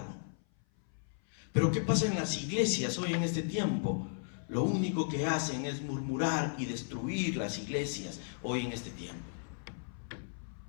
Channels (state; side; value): silent; right; 54 dB below the other